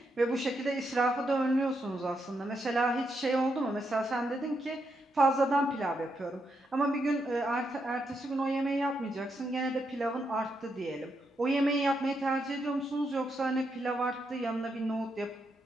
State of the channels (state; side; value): normal; both; correlation 0.81